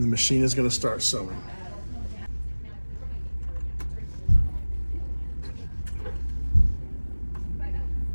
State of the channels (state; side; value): inverted; both; correlation -1.00